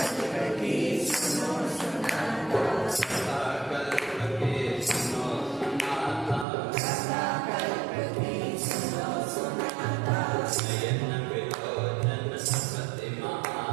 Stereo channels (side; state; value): left; drops out; at 6.5 s